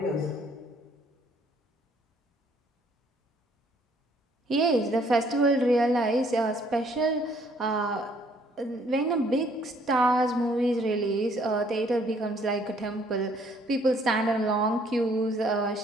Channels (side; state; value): both; normal; correlation 0.63